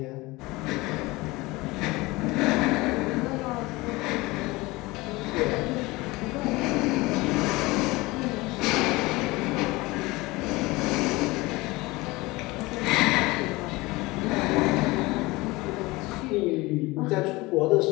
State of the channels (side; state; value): right; quieter; 21.9 dB